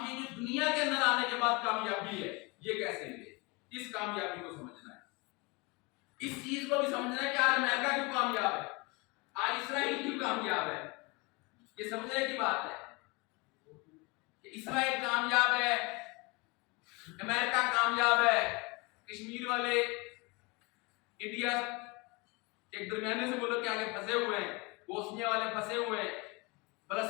یہ جو دنیا کے اندر آنے کے بعد کامیابی ہے یہ کیسے ملے. اس کامیابی کو سمجھنا ہے، اس چیز کو بھی سمجھنا ہے کہ آج امریکہ کیوں کامیاب ہے، آج اسرائیل کیوں کامیاب ہے. یہ سمجھنے کی بات ہے کہ اسرائیل کامیاب ہے، امریکہ کامیاب ہے، کشمیر والے انڈیا ایک درمیانے سے ملک کے آگے پھنسے ہوئے ہیں، بوسنیا والے پھنسے ہوئے ہیں،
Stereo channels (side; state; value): right; quieter; 27.2 dB